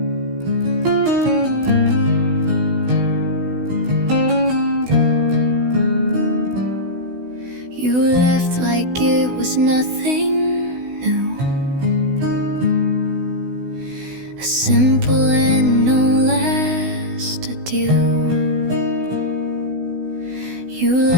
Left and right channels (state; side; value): late; left; 16 ms